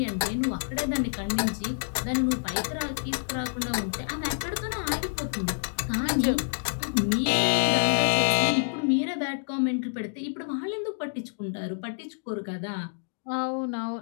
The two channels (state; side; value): silent; right; digital silence